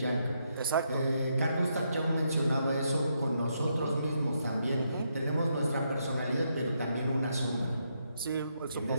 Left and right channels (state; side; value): inverted; both; correlation -0.78